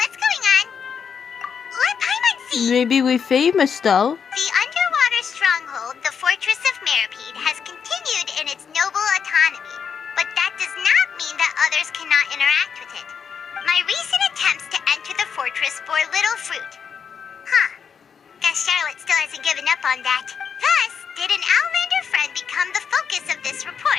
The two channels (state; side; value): quieter; right; 6.8 dB